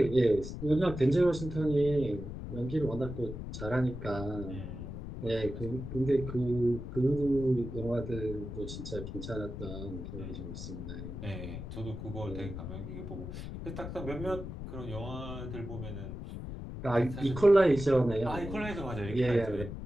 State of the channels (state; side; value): noise; left; rumble, 8 dB below the sound